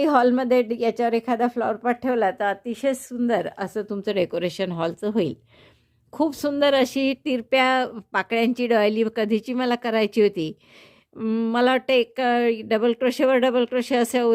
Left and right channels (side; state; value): both; identical; correlation 1.00